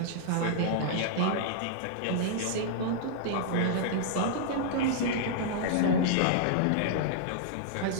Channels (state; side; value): different; both; correlation -0.01